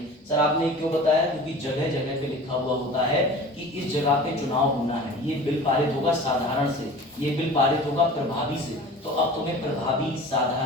सर आपने क्यों बताया? क्योंकि जगह जगह पे लिखा हुआ होता है कि इस जगह पे चुनाव होना है, ये बिल पारित होगा साधारण से, ये बिल पारित होगा प्रभावी से। तो अब तुम्हें प्रभावी,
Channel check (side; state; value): both; normal; correlation 0.40